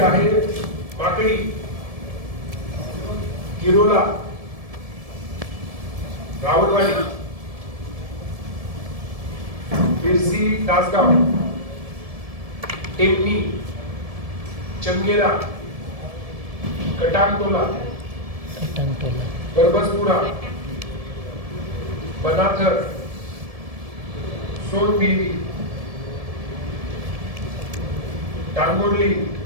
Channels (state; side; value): late; left; 1.7 ms